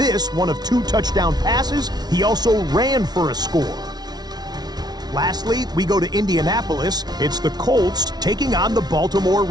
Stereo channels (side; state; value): left; late; 0.19 ms